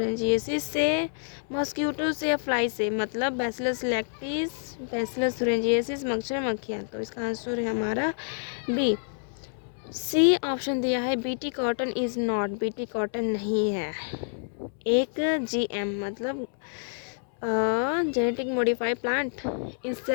से, मॉस्किटो से या फ्लाई से। मतलब बैसिलस लैक्टिस, बैसिलस थुरिंजिएसिस, मच्छर, मक्खियाँ। तो इसका आंसर है हमारा बी। सी ऑप्शन दिया है BT cotton is not. BT cotton नहीं है। एक जीएम मतलब genetic modified plant,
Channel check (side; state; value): right; silent; 59 dB below the other